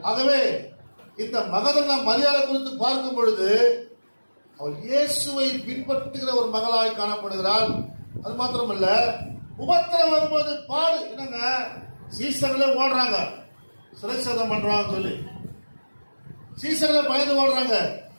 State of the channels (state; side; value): inverted; both; correlation -1.00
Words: ஆகவே இந்த மகதனா மரியாதை குறித்து பார்க்கும் பொழுது அவள் இயேசுவை பின்பற்றுகிற ஒரு மகளாய் காணப்படுகிறாள். அது மாத்திரமல்ல, உபத்திரம் வரும்போது பாடு. என்னங்க, சீசர்களே ஓடுறாங்க, சிறைச்சதம் பண்றாங்க சொல்லி சீசர்களே பயந்து ஓடுறாங்க.